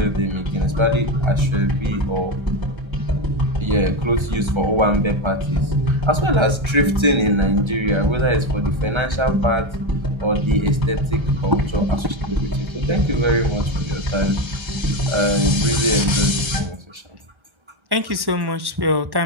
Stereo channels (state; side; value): late; left; 1.3 ms